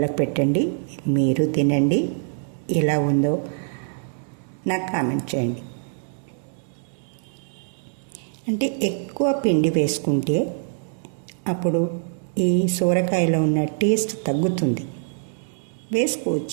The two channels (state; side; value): silent; left; digital silence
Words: పెట్టండి, మీరు తినండి. ఎలా ఉందో నాకు కామెంట్ చేయండి. అంటే ఎక్కువ పిండి వేసుకుంటే అప్పుడు ఈ సొరకాయలో ఉన్న టేస్ట్ తగ్గుతుంది.